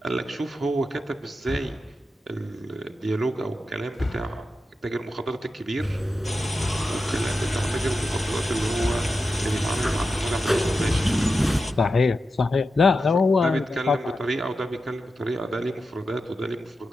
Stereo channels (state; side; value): normal; both; correlation 0.90